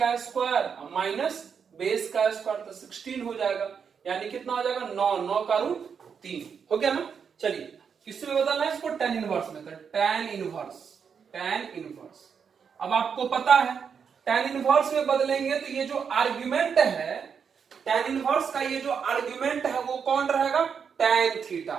स्क्वायर माइनस बेस का स्क्वायर, तो 16 हो जाएगा। यानी कितना हो जाएगा, 9 का रूट 3 हो गया ना। चलिए किसमें बदलना है इसको, tan इनवर्स में। तो tan इनवर्स अब आपको पता है tan इनवर्स में बदलेंगे तो ये जो आर्गुमेंट है, tan इनवर्स का ये जो आर्गुमेंट है वो कौन रहेगा, tan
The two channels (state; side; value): quieter; left; 6.7 dB